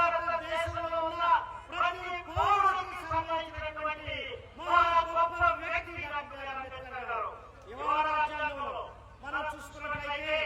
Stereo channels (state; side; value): identical; both; correlation 1.00